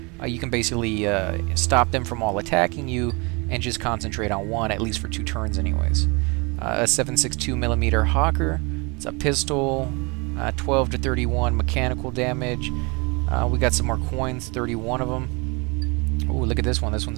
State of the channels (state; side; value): quieter; left; 29.1 dB